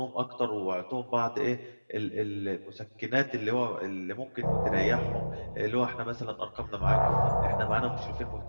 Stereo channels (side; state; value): both; inverted; correlation -1.00